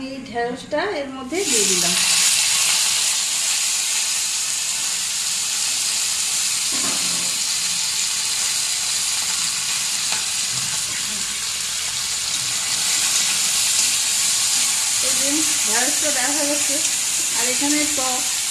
এই ঢেঁড়সটা এর মধ্যে দিয়ে দিলাম। এই যে ঢেঁড়সটা দেখা যাচ্ছে। আর এখানে টক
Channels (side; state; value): both; identical; correlation 1.00